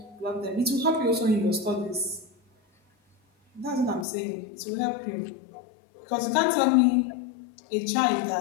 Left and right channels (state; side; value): drops out; right; at 4.0 s